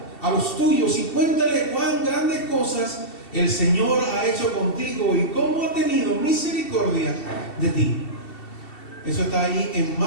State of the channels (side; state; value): right; late; 2.7 ms